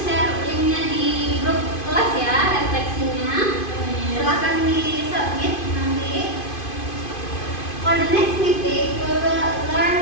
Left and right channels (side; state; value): right; late; 2.5 ms